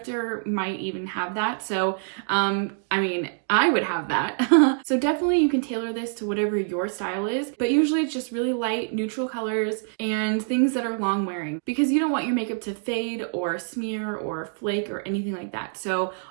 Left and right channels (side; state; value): left; silent; digital silence